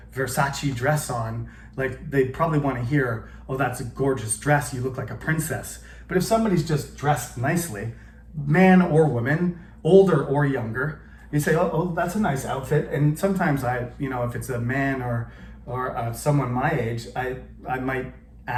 Versace dress on, like they probably want to hear, oh, that's a gorgeous dress, you look like a princess. But if somebody's just dressed nicely, man or woman, older or younger, you say, oh, that's a nice outfit. And sometimes if it's a man or someone my age, I might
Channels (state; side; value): identical; both; correlation 1.00